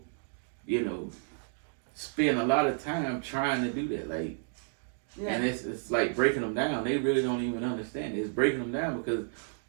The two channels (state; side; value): silent; left; digital silence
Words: spend a lot of time trying to do that. Like, yeah. And it's like breaking them down. They really don't even understand it. It's breaking them down because